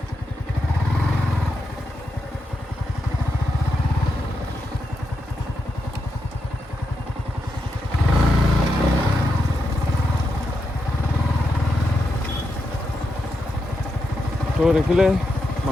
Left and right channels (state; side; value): normal; both; correlation 0.84